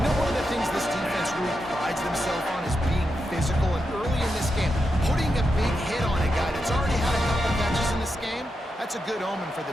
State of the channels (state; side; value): normal; both; correlation 0.87